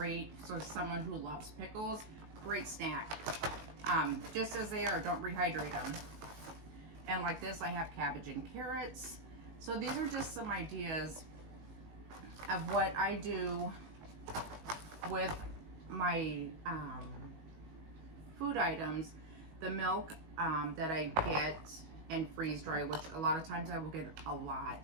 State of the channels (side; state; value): left; late; 19 ms